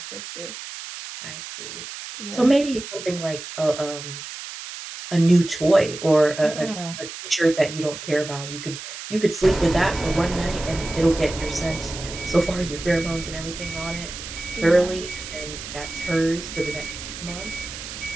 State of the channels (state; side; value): noise; right; hiss, 10 dB below the sound